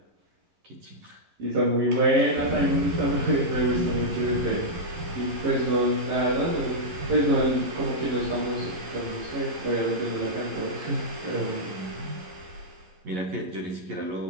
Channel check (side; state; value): left; late; 11 ms